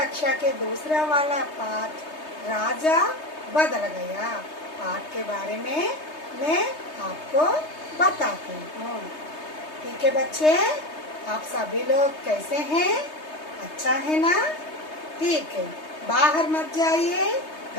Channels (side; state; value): right; late; 3.2 ms